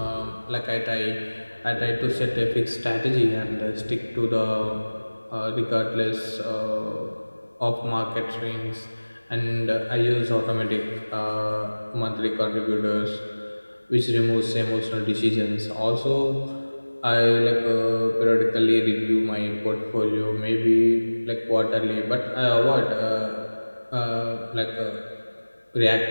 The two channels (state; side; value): inverted; both; correlation -1.00